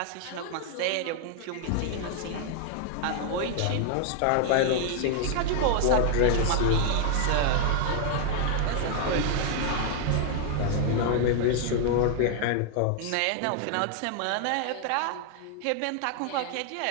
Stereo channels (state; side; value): different; both; correlation 0.00